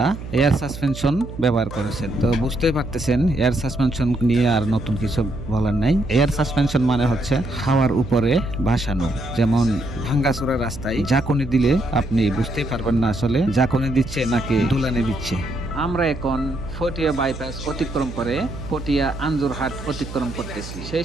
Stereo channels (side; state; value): right; noise; hum, 11 dB below the sound